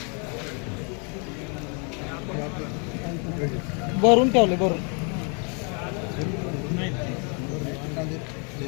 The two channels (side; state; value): right; quieter; 36.8 dB